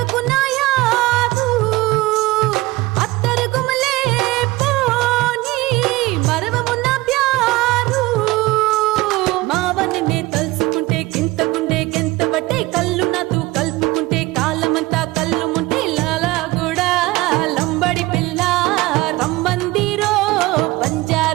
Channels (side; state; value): left; quieter; 20.3 dB